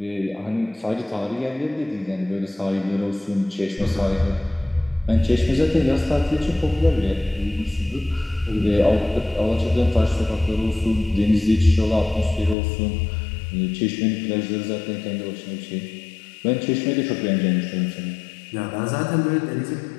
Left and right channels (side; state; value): right; drops out; at 12.6 s